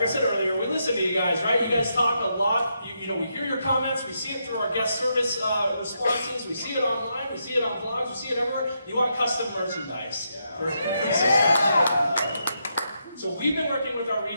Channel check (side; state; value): both; inverted; correlation -0.81